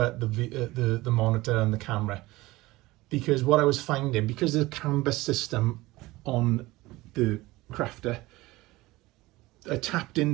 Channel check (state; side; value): quieter; left; 19.6 dB